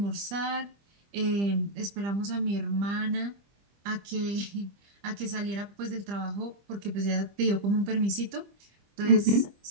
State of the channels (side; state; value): left; late; 25 ms